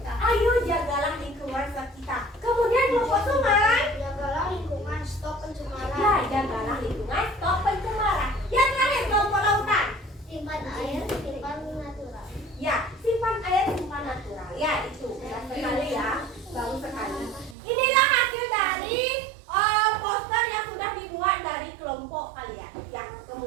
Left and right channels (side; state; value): left; drops out; at 17.6 s